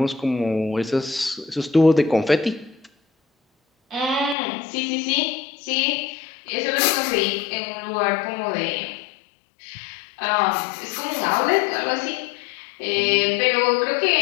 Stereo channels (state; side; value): drops out; right; at 4.4 s